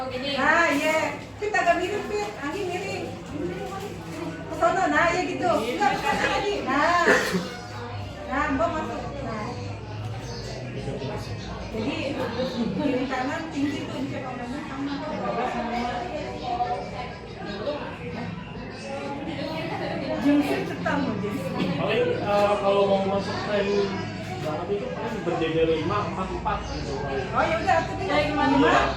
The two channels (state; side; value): identical; both; correlation 1.00